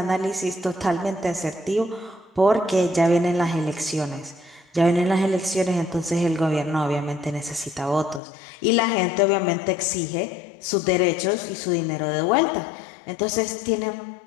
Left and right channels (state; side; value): drops out; right; at 8.2 s